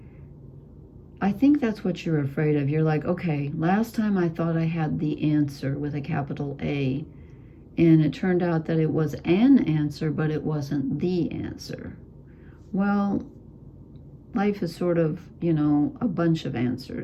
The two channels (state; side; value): identical; both; correlation 1.00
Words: I think that's what you're afraid of. You're like, okay, last time I thought I had the answer with a capital A, and it turned out that it was an answer, but it wasn't the answer. Well, life is sort of, you know, a bunch of